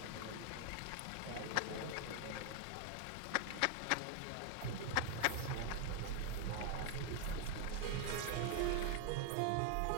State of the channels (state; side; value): different; both; correlation 0.00